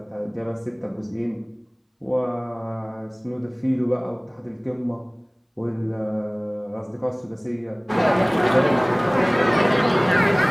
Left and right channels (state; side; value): identical; both; correlation 1.00